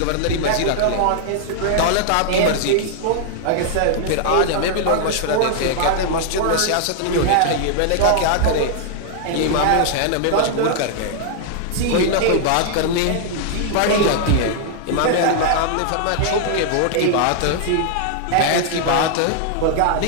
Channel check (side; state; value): both; different; correlation 0.00